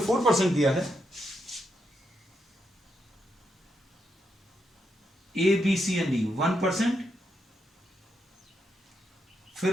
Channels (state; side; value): normal; both; correlation 0.82